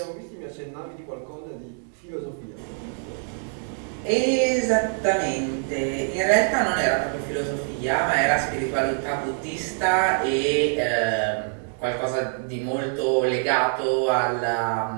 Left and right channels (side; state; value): left; silent; 55 dB below the other